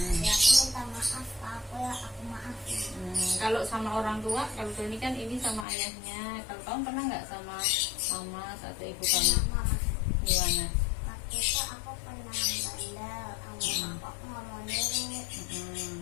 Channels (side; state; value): right; drops out; at 5.7 s